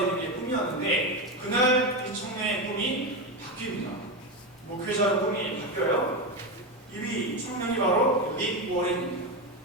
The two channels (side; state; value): both; normal; correlation 0.14